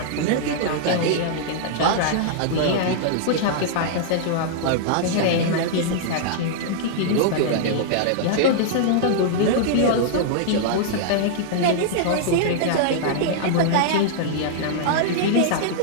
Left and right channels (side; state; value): both; different; correlation -0.01